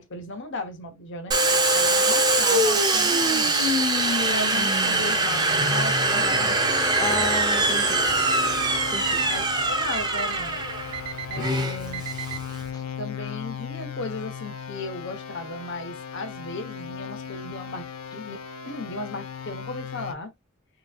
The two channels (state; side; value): normal; both; correlation -0.08